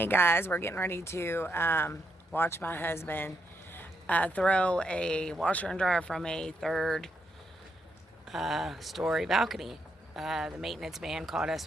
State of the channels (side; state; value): both; normal; correlation 0.78